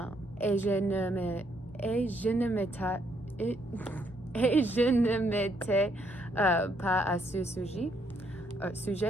Et je ne m'étais pas à ce sujet.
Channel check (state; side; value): normal; both; correlation 0.72